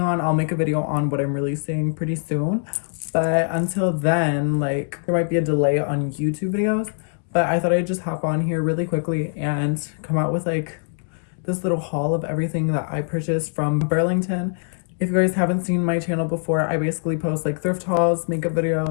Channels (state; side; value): silent; right; digital silence